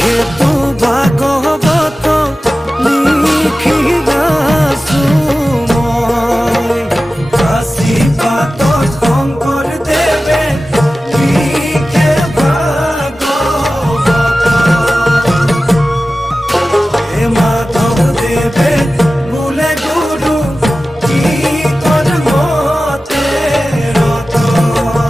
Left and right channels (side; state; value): both; normal; correlation 0.95